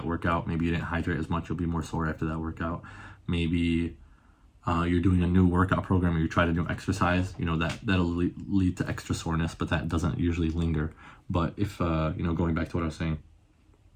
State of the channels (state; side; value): identical; both; correlation 1.00